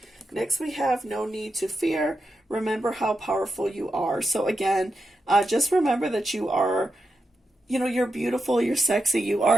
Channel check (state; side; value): normal; both; correlation 0.87